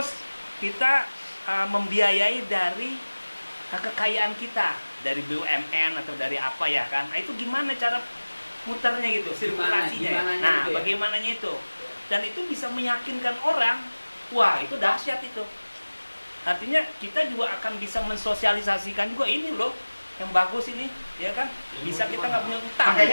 kita membiayai dari kekayaan kita, dari BUMN atau dari apa ya kan. Nah, itu gimana cara muternya gitu, sirkulasinya ya. Gimananya Nah, itu ya. bagaimananya itu. Dan itu bisa meyakinkan orang. Wah, itu dahsyat itu. Artinya kita juga akan bisa mensosialisasikan juga ini loh, yang bagus ini, ya kan? Bisa kita nggak punya utang, Makanya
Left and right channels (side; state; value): both; inverted; correlation -1.00